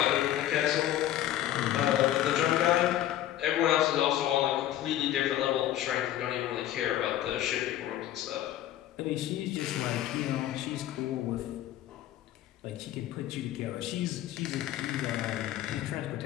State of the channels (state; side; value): quieter; right; 12.7 dB